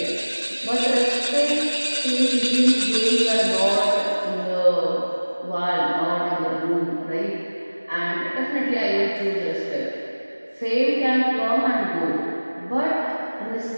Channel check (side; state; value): both; inverted; correlation -1.00